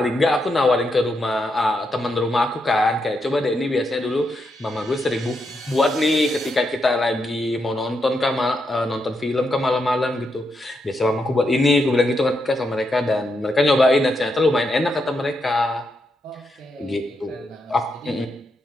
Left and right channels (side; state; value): both; normal; correlation 0.82